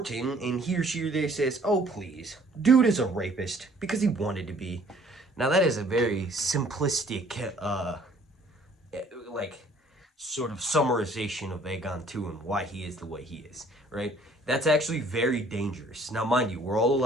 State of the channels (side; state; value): both; normal; correlation 0.57